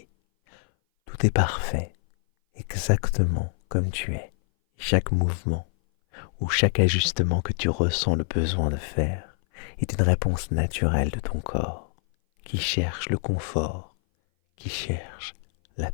Tout est parfait, exactement comme tu es. Chaque mouvement ou chaque ajustement que tu ressens le besoin de faire est une réponse naturelle de ton corps qui cherche le confort, qui cherche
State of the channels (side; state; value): right; silent; 58 dB below the other